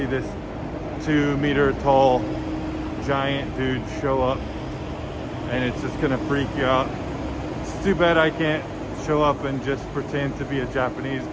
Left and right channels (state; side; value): identical; both; correlation 1.00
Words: this 2-meter tall giant dude show up and it's just gonna freak you out. It's too bad I can't show up and just pretend to be a Japanese